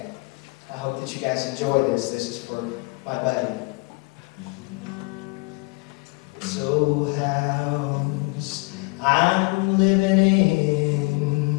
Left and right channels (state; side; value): quieter; right; 27.7 dB